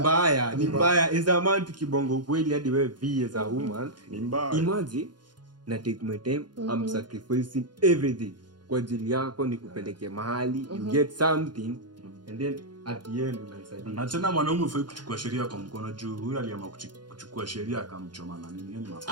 Ni mbaya as a man tukibongo ukweli hadi wewe be as a woman Ni mbaya. imagine na take my time I'm sacrificing everything kwa ajili yako nikupeleke mahali you get something and then at the end unaisadia. Na tena mwanaume ufai kuchukua sheria kwa mkono juu huyu aliamua kuchukua sheria akamchoma na nini? Yaani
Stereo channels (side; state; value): left; late; 0.71 ms